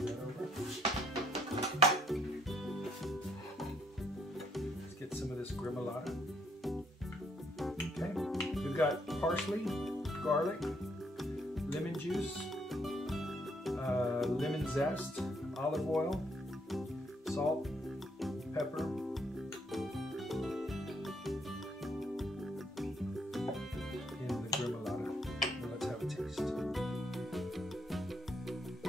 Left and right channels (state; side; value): normal; both; correlation 0.70